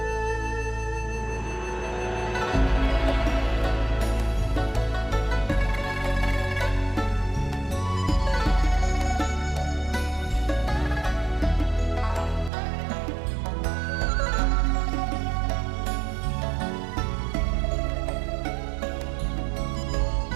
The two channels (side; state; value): left; drops out; at 12.5 s